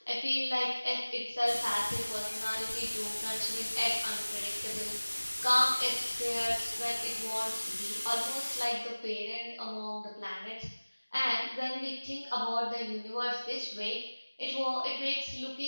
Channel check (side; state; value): both; inverted; correlation -1.00